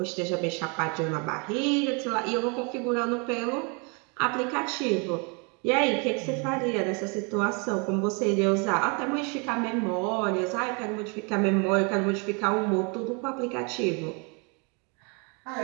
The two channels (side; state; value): left; quieter; 33.2 dB